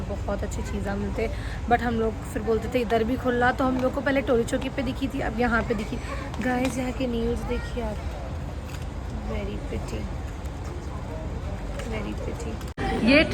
बहुत अच्छी चीज़ें मिलते, बट हम लोग फिर बोलते थे इधर भी खुला। तो हम लोग को पहले टोली चौकी पे दिखी थी, अब यहाँ पे दिखी। गाइस यहाँ के न्यूज़ देखिए आप, वेरी प्रिटी, वेरी प्रिटी। ये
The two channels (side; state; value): both; identical; correlation 1.00